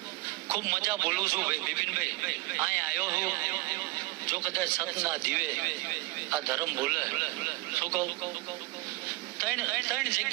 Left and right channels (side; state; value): left; quieter; 21.2 dB